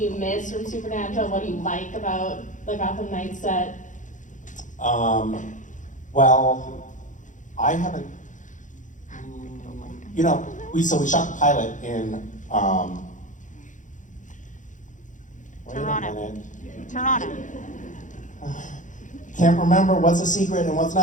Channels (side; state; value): right; late; 0.37 ms